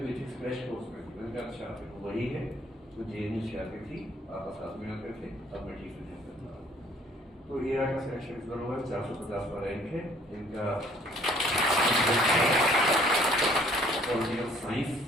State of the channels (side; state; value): both; normal; correlation 0.59